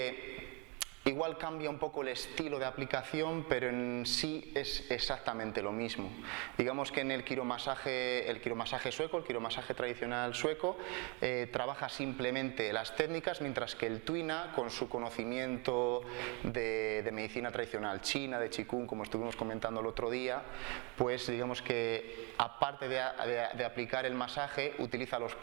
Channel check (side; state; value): left; quieter; 29.5 dB